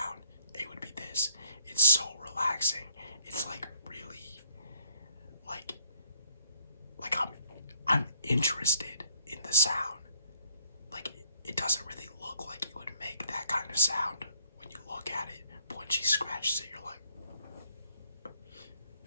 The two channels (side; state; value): both; inverted; correlation -0.63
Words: it would be this. It's so relaxing. It's like really like I'm interested in the sound. Like it doesn't really look like it would make that kind of sound when you look at it, but when she scratches it, you're like,